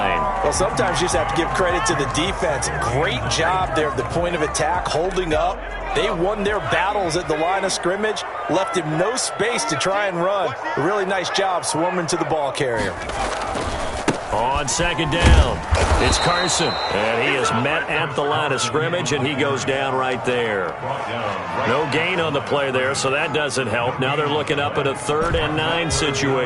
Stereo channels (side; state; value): both; identical; correlation 1.00